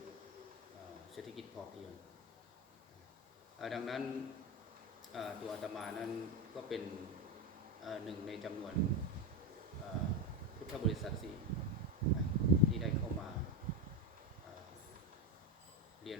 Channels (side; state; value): both; normal; correlation 0.14